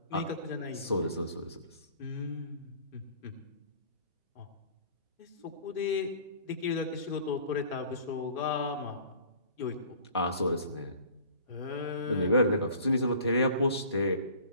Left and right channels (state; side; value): inverted; both; correlation -0.48